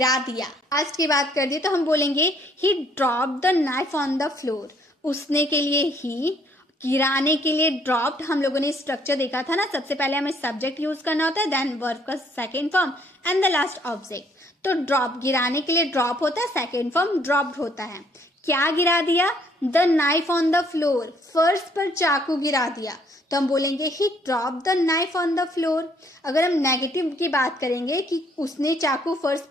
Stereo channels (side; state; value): both; normal; correlation 0.65